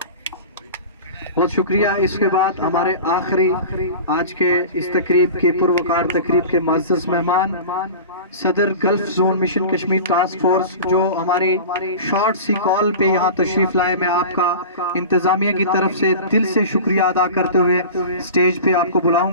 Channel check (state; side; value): inverted; both; correlation -0.35